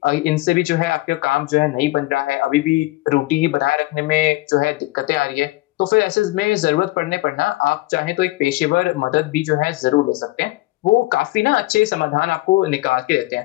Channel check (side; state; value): right; quieter; 19.9 dB